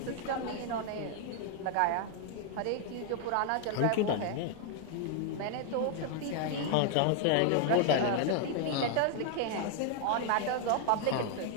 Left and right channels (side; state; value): both; different; correlation 0.00